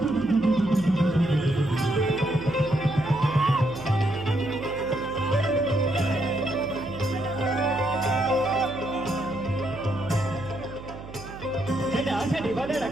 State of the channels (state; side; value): noise; right; hum, 14 dB below the sound